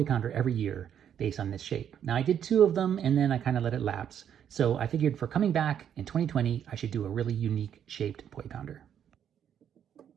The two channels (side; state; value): left; quieter; 9.1 dB